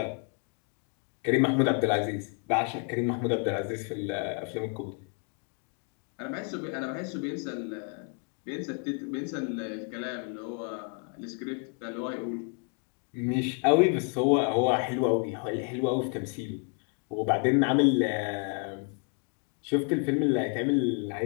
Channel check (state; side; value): quieter; right; 36.8 dB